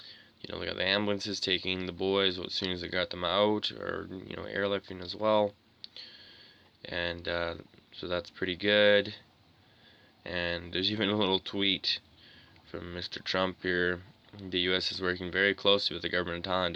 They got the ambulances taking the boys as soon as they got them out, or airlifting as well. And so that's pretty good. And there's even a little tweet from Mr. Trump here. The U.S. is working very closely with the government of Thailand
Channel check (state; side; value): identical; both; correlation 1.00